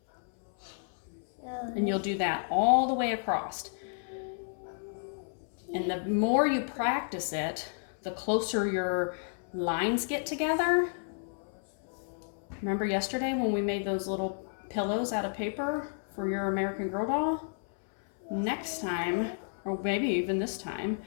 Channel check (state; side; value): silent; right; 57 dB below the other